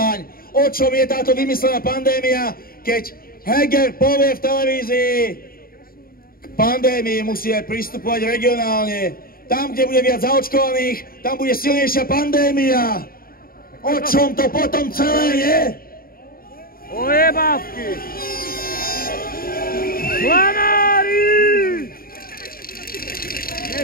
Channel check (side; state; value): right; late; 0.43 ms